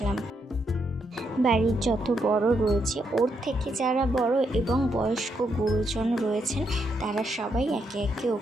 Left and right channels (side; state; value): both; normal; correlation 0.79